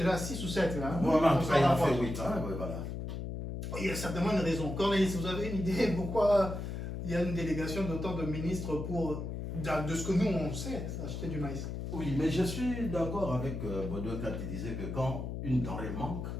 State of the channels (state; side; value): noise; left; hum, 5 dB below the sound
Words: à 6 ou 7 là. Hein? Voilà, en On tout s'en cas, il en rapproche. fait 8. Hein, ouais, voilà. Il y a certainement une raison. Cornelis, vous avez une idée pourquoi il y a une délégation d'autant de ministres pour, de ce que nous on sait, acheter du maïs? Oui, mais je suis d'accord avec Baudouin quand il disait que quand une denrée manque,